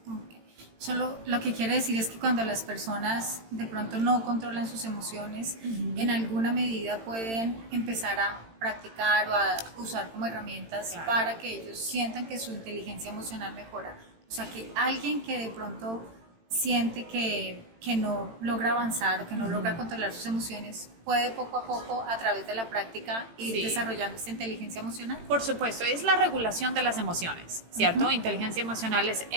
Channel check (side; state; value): left; late; 18 ms